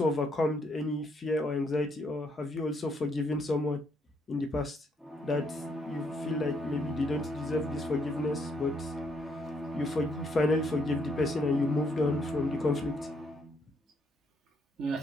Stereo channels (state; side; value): normal; both; correlation 0.72